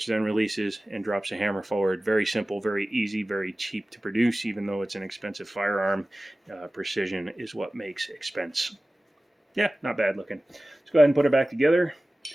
then releases and drops a hammer forward. Very simple, very easy, very cheap to produce, even though it's an expensive firearm. Precision is what makes expense. Yeah, not bad looking. Let's go ahead and put it back together.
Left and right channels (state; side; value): normal; both; correlation 0.97